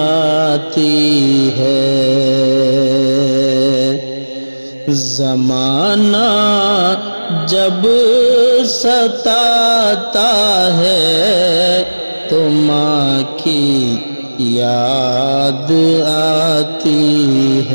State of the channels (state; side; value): inverted; both; correlation -1.00